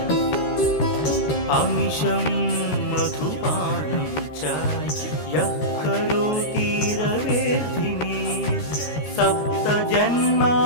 अमिषं मधुपानं च यः करोति रवेर्धिनी सप्तजन्म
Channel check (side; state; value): right; late; 13 ms